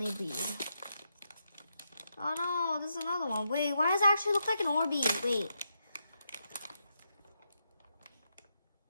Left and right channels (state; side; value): inverted; both; correlation -0.83